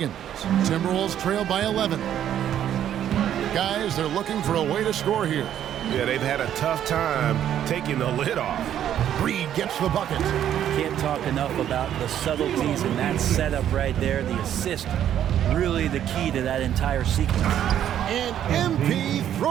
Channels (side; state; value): left; quieter; 10.5 dB